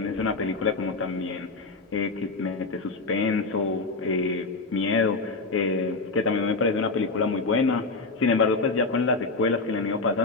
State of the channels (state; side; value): quieter; right; 3.7 dB